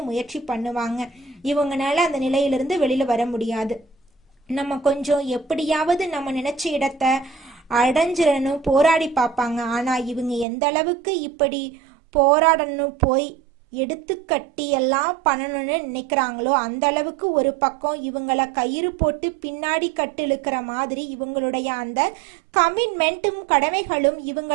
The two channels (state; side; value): drops out; left; at 10.5 s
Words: முயற்சி பண்ணுவாங்க. இவங்கனால அந்த நிலையிலிருந்து வெளியில வர முடியாது. நம்ம கொஞ்சம் எப்படியாவது நம்ம நினைச்ச இடத்த அடைஞ்சிடணும் போராடி பார்ப்பாங்க. ஆனா இவங்க எந்த அளவுக்கு இப்படி போராடணும் போய் எடுத்து கட்டி எல்லாம் பண்ணணும்னு நினைக்கிறாங்களோ அந்த அளவுக்கு ஒரு பக்கம் இவங்கள கயிறு போட்டு பின்னாடி கட்டு இழுக்கிற மாதிரி இவங்களுடைய அந்த கமிட்மெண்ட்டும் கடமைகளும்